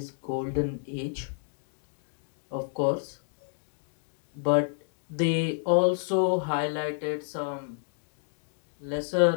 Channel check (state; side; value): silent; right; digital silence